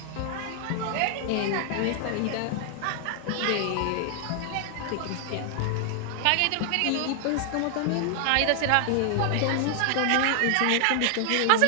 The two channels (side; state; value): both; different; correlation 0.00